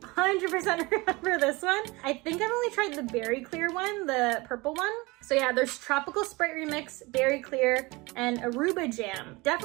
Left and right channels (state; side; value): quieter; left; 23.8 dB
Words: remember this one. I think I've only tried the berry clear one, the purple one. So yeah, there's Tropical Sprite Remix, Berry Clear, and Aruba Jam.